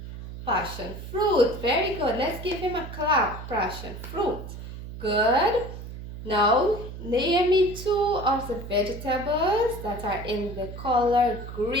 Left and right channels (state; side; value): noise; right; hum, 11 dB below the sound